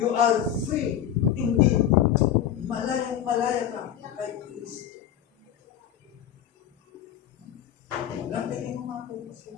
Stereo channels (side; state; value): right; quieter; 10.2 dB